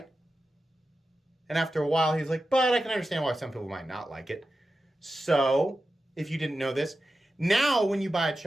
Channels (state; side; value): normal; both; correlation 0.92